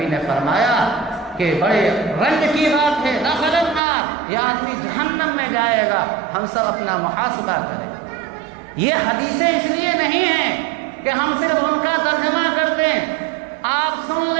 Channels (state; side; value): drops out; left; at 3.8 s